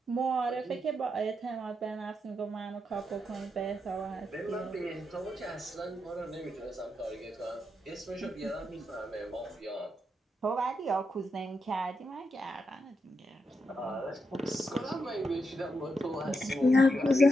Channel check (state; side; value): normal; both; correlation 0.83